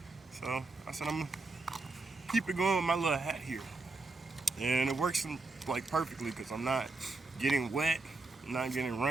So I said I'm gonna keep it going with my little hat here. And it works like perfectly because I'm not getting wet, I'm not getting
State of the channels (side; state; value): left; quieter; 3.4 dB